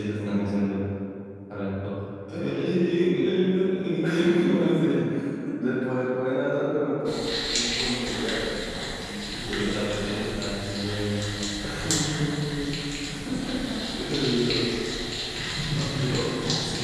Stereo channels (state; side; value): identical; both; correlation 1.00